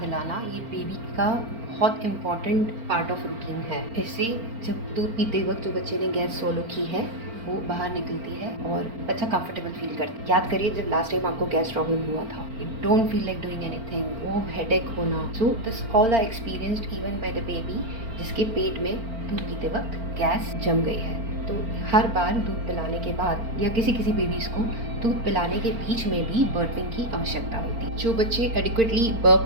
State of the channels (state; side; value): late; left; 4.4 ms